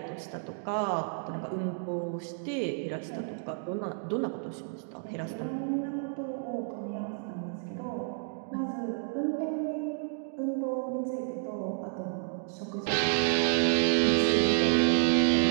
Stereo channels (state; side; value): silent; left; 57 dB below the other